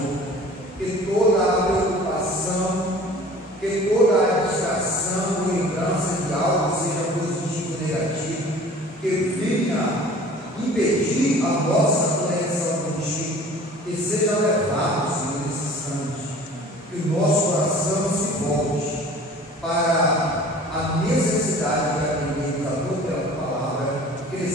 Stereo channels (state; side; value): normal; both; correlation 0.46